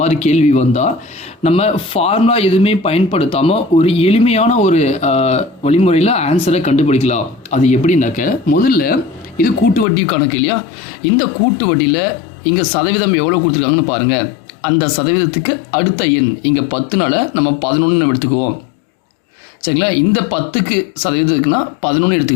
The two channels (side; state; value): right; drops out; at 9.9 s